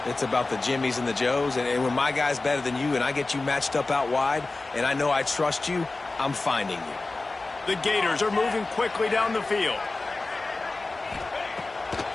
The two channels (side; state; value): right; quieter; 3.4 dB